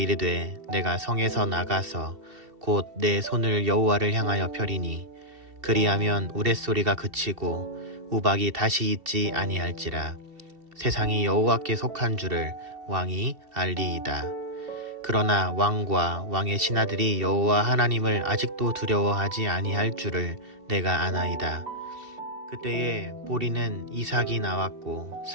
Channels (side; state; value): left; late; 2.7 ms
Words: 내가 성에서 나가서 곧 내 손을 여호와를 향하여 펴리니 그리하면 우레소리가 그치고 우박이 다시 있지 아니할지라. 세상이 여호와께 속한 줄을 왕이 알리이다. 그러나 왕과 왕의 신하들이 여호와 하나님을 아직도 두려워하지 아니할 줄을 내가 아나이다. 그때에 보리는 이삭이 나왔고